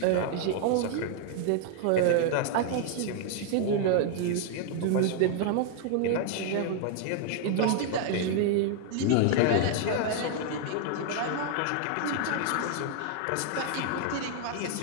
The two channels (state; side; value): different; both; correlation 0.00